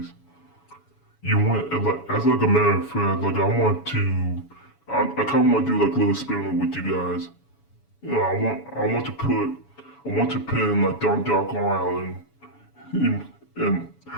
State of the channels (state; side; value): late; right; 7.1 ms